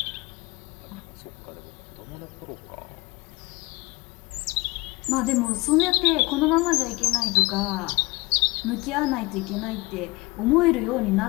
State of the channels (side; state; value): right; quieter; 23.6 dB